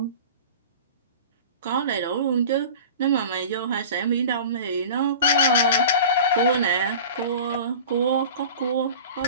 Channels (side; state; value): both; inverted; correlation -0.37